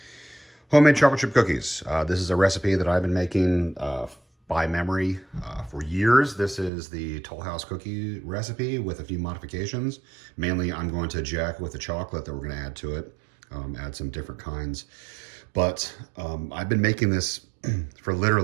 homemade chocolate chip cookies. This is a recipe that I've been making by memory for years. This is the Toll House cookie recipe with a few modifications. Mainly, I'm going to jack with the chocolate that we're going to add to it, add some different kinds. But I've been making this for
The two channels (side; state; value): left; drops out; at 6.7 s